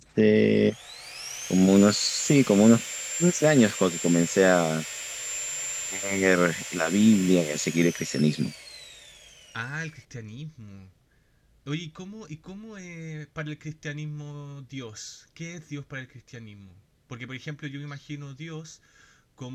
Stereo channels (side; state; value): both; identical; correlation 1.00